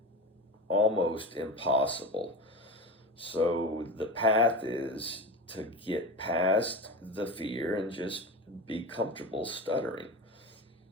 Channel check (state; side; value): normal; both; correlation 0.27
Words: almost impossible. So the path is to get past the fear and just be comfortable stuttering.